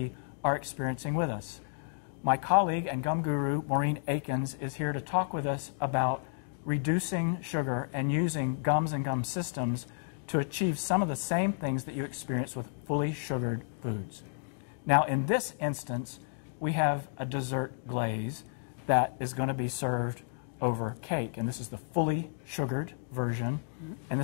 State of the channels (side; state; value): right; silent; digital silence